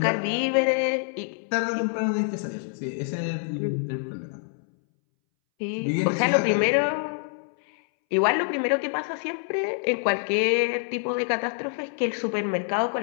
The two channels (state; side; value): silent; right; 61 dB below the other